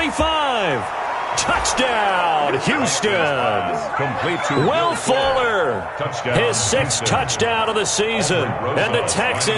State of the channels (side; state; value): both; identical; correlation 1.00